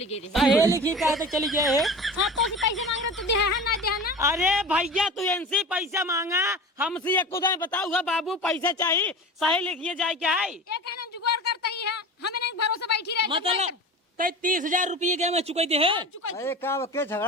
गई हे लिखी कहा तक चली गए है हाँ तो पैसे मांग रहे तो दे है ना दे है ना। अरे भैया तू इनसे पैसा मांगा हमसे एक खुदा बताऊंगा बाबू पैसा चाहिए सही लिखिए जाए क्या है ये कहना जुगाड़ करता ही है हमें नहीं भरोसे बैठी रहे मतलब तय 30,000 रुपये के मैं चुकाई दे है अरे का के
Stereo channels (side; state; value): both; normal; correlation 0.33